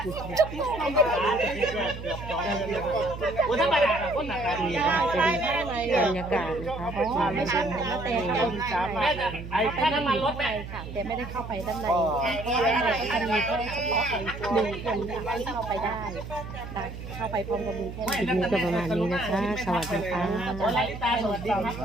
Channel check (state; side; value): noise; right; hum, 10 dB below the sound